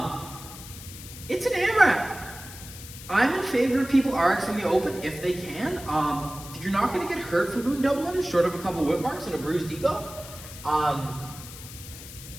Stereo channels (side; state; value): left; noise; hiss, 14 dB below the sound